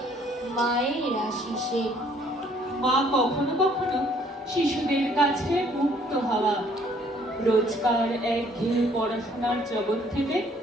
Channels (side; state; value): both; normal; correlation 0.62